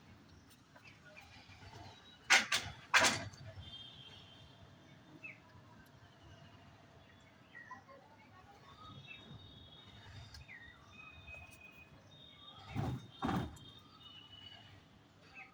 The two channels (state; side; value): identical; both; correlation 1.00